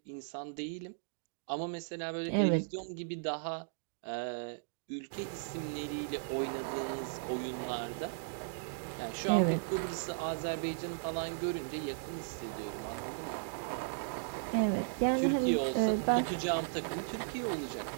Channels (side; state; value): left; silent; digital silence